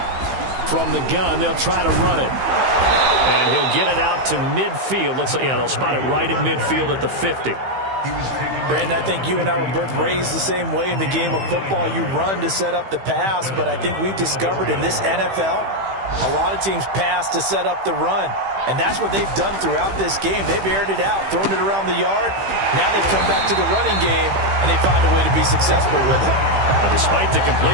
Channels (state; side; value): late; left; 15 ms